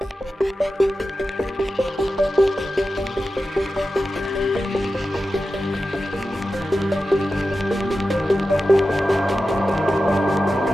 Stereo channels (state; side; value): normal; both; correlation 0.92